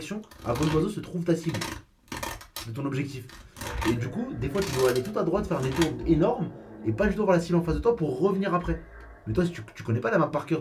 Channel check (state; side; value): identical; both; correlation 1.00